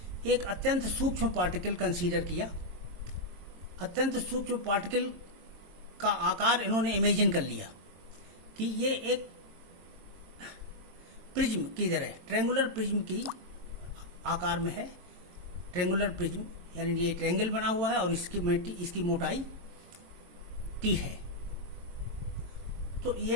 एक अत्यंत सूक्ष्म पार्टिकल कंसीडर किया। अत्यंत सूक्ष्म पार्टिकल का आकार इन्होंने इमेजिन कर लिया कि ये एक प्रिज्म की तरह, ट्रेंगुलर प्रिज्म की आकार में है। ट्रेंगुलर प्रिज्म यानी ये ट्रेंगल बना हुआ है और इसकी मोटाई T है। तो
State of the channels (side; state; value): left; late; 22 ms